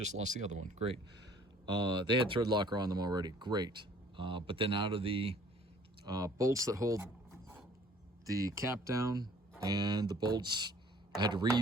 lost the other one. Great. They had thread locker on them already. Great. But then out of the bolts that hold the cap down and the bolts, I had to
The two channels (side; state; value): both; normal; correlation 0.55